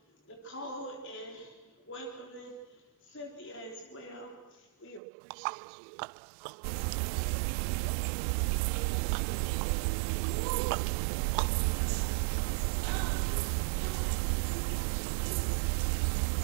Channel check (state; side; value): drops out; left; at 5.0 s